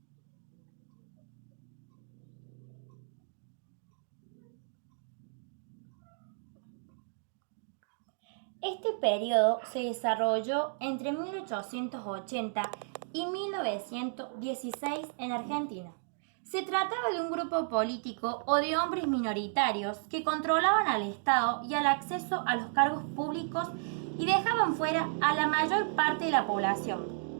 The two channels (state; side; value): silent; left; digital silence